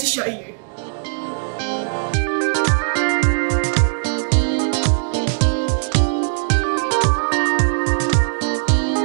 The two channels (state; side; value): silent; left; digital silence